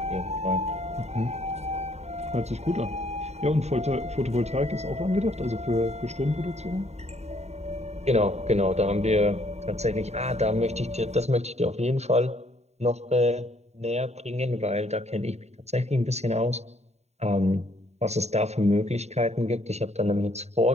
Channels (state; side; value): late; left; 0.32 ms